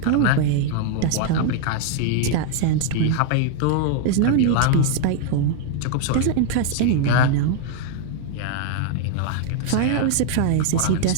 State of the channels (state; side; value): different; both; correlation 0.00